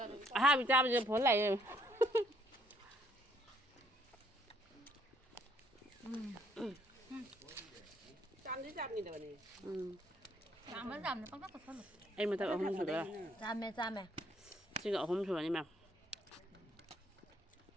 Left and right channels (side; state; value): both; normal; correlation 0.67